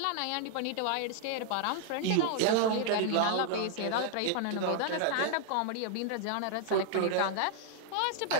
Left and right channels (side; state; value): both; different; correlation 0.00